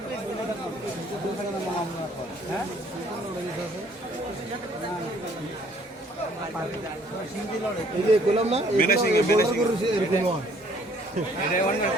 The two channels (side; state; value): both; normal; correlation 0.60